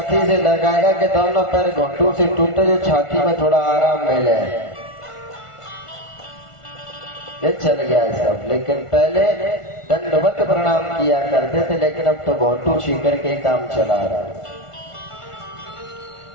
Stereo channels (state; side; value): late; right; 1.4 ms